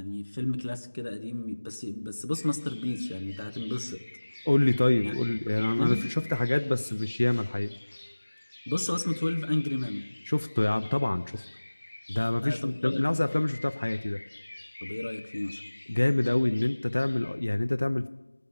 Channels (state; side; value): inverted; both; correlation -1.00